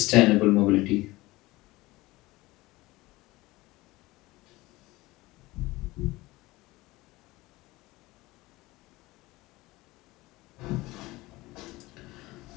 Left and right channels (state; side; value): quieter; right; 20.1 dB